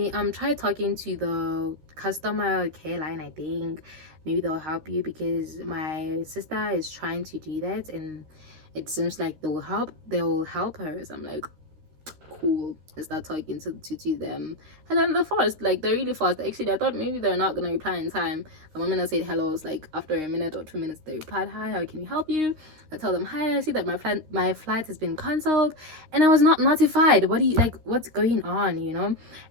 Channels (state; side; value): late; left; 13 ms